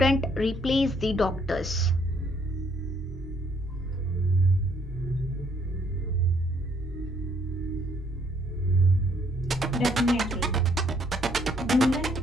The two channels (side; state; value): both; normal; correlation 0.67